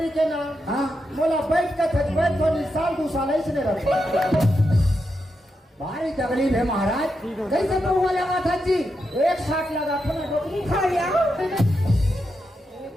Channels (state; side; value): normal; both; correlation 0.85